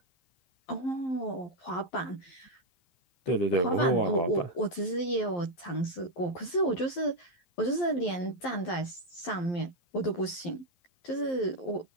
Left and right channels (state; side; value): late; right; 11 ms